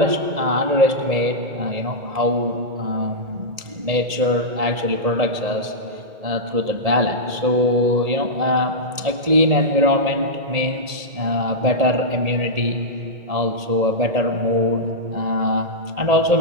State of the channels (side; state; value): left; late; 1.8 ms